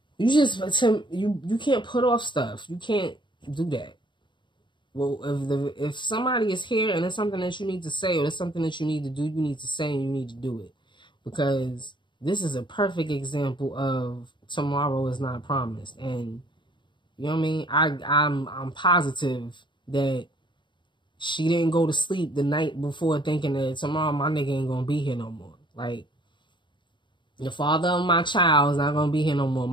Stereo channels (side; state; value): right; late; 0.23 ms